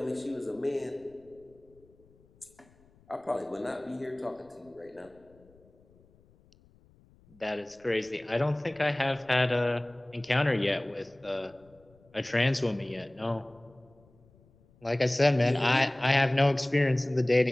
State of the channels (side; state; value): left; noise; rumble, 29 dB below the sound